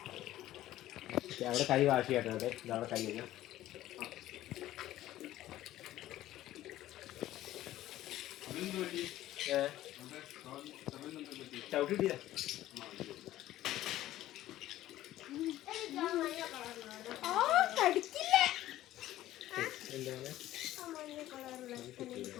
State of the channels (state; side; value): quieter; right; 14.4 dB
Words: അവിടെ കൈ വാഷ് ചെയ്യട്ടെ. അവിടെ ഇതവിടെ കൈ കഴിഞ്ഞാൽ ചവിട്ടിട്ടില്ല.